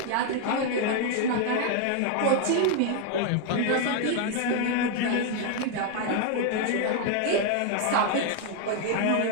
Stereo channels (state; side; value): different; both; correlation 0.01